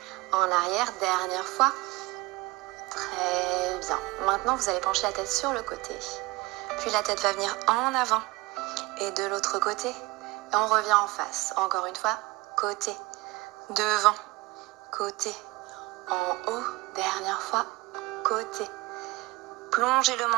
en arrière. Dernière fois. Très bien. Maintenant, vous allez pencher la tête sur le côté. Puis la tête va venir en avant. Et de l'autre côté. Et on revient en face. Encore une fois, côté, devant, côté, en haut, dernière fois, côté. Plongez le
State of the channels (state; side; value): quieter; left; 22.1 dB